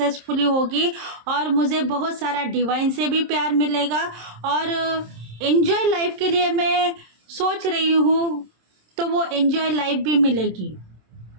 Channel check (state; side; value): late; left; 27 ms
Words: होगी और मुझे बहुत सारा डिवाइन से भी प्यार मिलेगा और एंजॉय लाइफ के लिए मैं सोच रही हूँ, तो वो एंजॉय लाइफ भी मिलेगी।